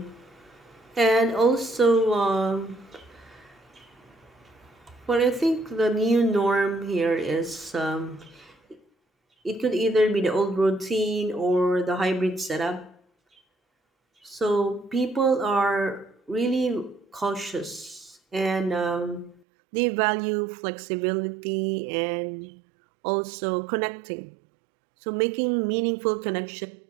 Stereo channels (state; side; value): drops out; left; at 19.4 s